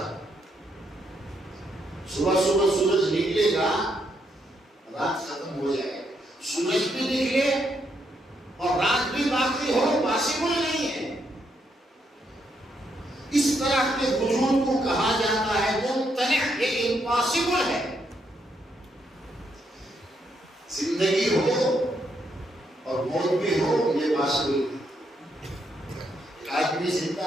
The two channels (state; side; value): normal; both; correlation 0.77